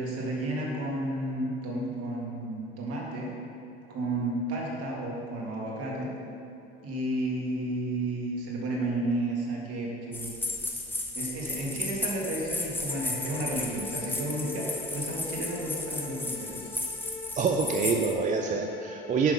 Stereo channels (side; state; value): both; normal; correlation 0.43